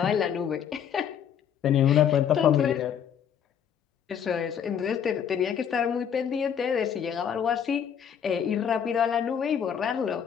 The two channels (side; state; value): right; quieter; 8.4 dB